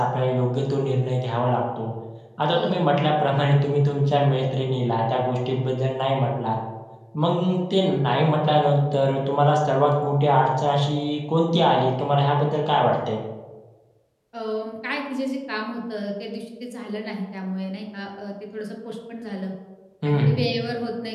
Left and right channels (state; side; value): identical; both; correlation 1.00